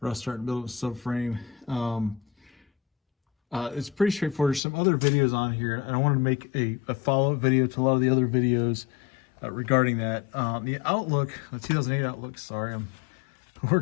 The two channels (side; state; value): right; drops out; at 4.6 s